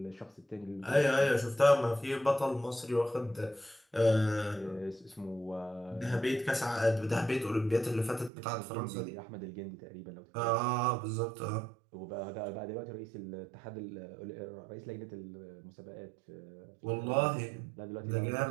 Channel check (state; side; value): drops out; left; at 8.3 s